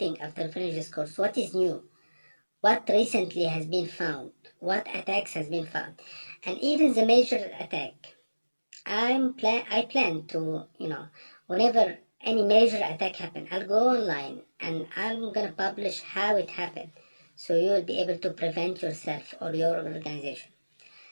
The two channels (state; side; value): inverted; both; correlation -1.00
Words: after finish this course. What is new? What recently has been found? What attacks has been found? And even the major attack. I plan to, whenever any major attack happen, I'll go online and I'm gonna publish how it happened. So you will be able to prevent yourself or your organization.